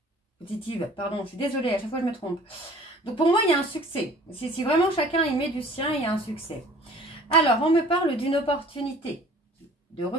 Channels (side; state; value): both; normal; correlation 0.49